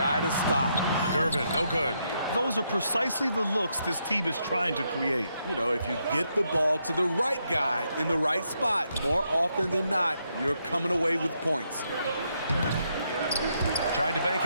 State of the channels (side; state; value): both; inverted; correlation -0.78